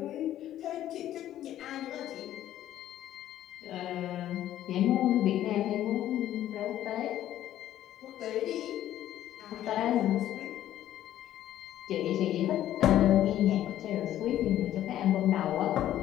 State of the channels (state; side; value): quieter; right; 12.4 dB